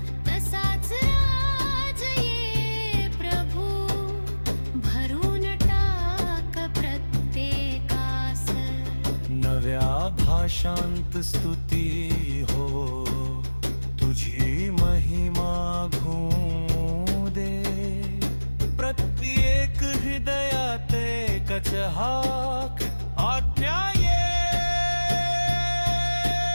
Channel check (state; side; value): inverted; both; correlation -1.00